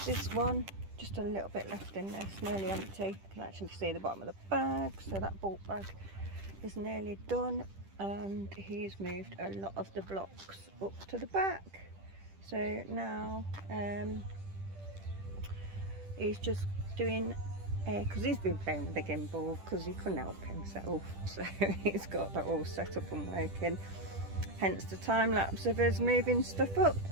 this one, just a little bit left in there. It's nearly empty. You can actually see the bottom of the bag, so that bulk bag is nearly done. And he's moved a lot of the blocks up to the back, so now he's just doing because he's been playing with the gimbal because he couldn't help himself, so he's got that all set up and working, hence the time lapse of us moving stuff up,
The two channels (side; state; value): left; late; 10 ms